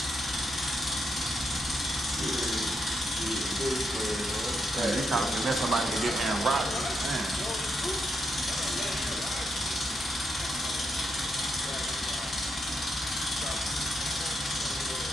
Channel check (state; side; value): normal; both; correlation 0.81